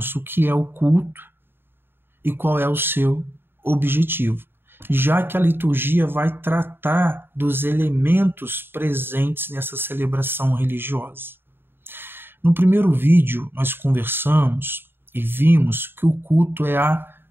o que é o culto e qual é o seu objetivo, já que a liturgia vai tratar dos elementos presentes nessa celebração religiosa. No primeiro vídeo, nós conversamos e vimos que o culto é a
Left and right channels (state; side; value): late; left; 0.10 ms